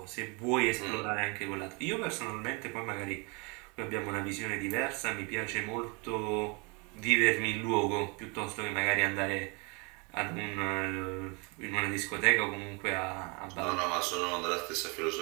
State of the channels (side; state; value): left; quieter; 31.1 dB